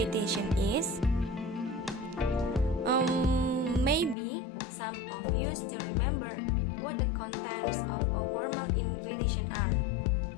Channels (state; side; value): drops out; right; at 4.2 s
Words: is? Maybe some of you still remember what the contents of a formal invitation are.